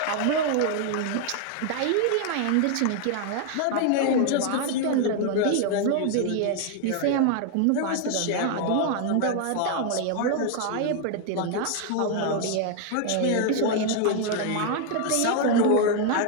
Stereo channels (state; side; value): different; both; correlation 0.00